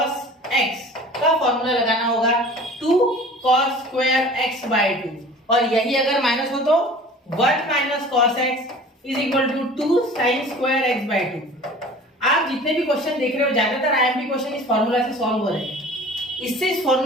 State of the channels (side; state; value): both; normal; correlation 0.43